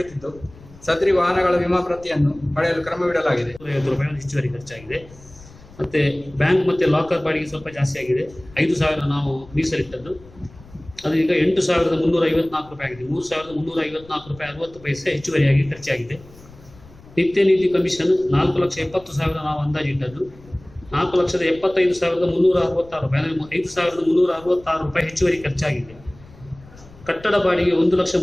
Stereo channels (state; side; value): noise; left; rumble, 22 dB below the sound